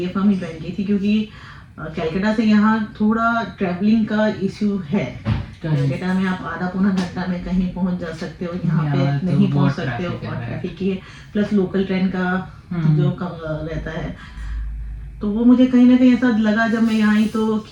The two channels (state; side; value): identical; both; correlation 1.00